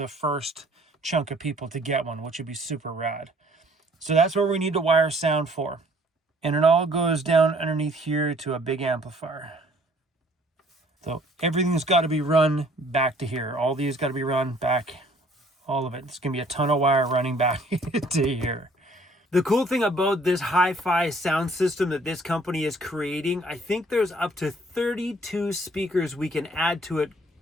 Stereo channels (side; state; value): both; normal; correlation 0.58